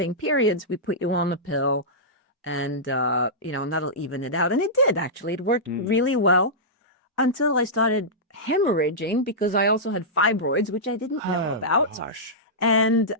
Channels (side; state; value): both; normal; correlation -0.13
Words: periods, we put you on the pill, and and that'll even it out. And it did, actually. It worked Mm. really well until I started hemorrhaging, because I also had fibroids, which I didn't know Oh about. gosh. And